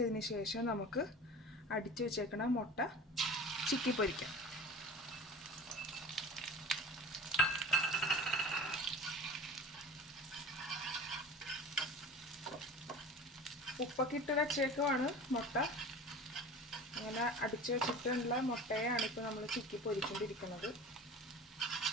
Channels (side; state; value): both; normal; correlation 0.38